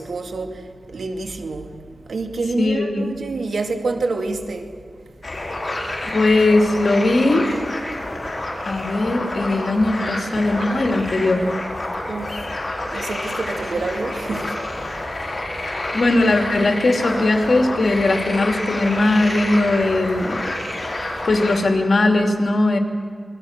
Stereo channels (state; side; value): normal; both; correlation 0.94